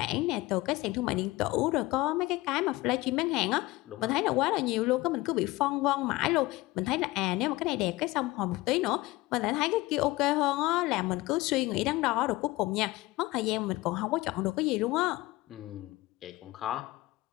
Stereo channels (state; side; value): quieter; right; 20.1 dB